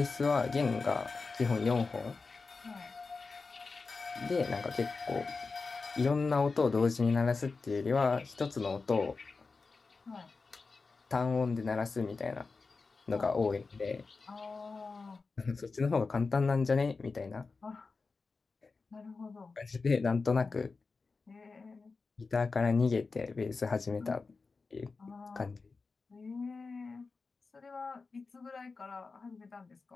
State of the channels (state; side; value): quieter; right; 4.3 dB